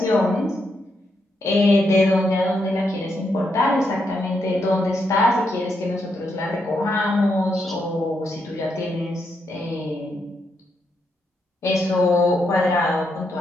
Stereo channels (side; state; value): both; normal; correlation 0.80